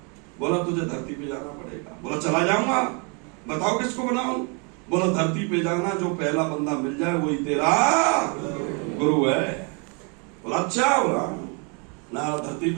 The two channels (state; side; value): quieter; left; 35.0 dB